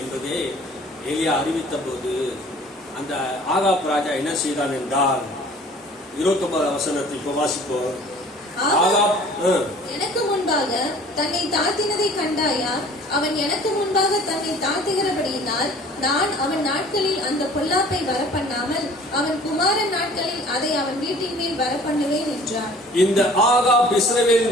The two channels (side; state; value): both; normal; correlation 0.49